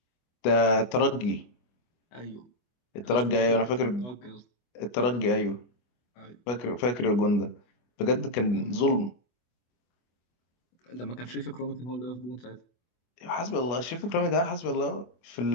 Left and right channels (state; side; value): late; right; 25 ms